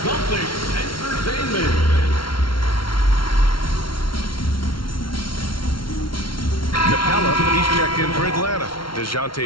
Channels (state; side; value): late; right; 0.74 ms